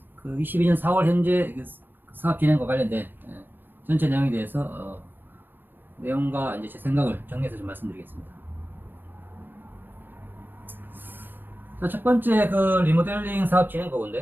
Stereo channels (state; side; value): late; left; 0.094 ms